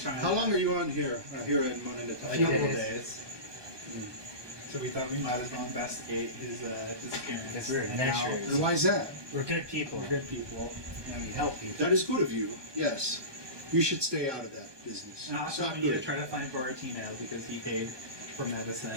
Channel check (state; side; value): late; left; 1.2 ms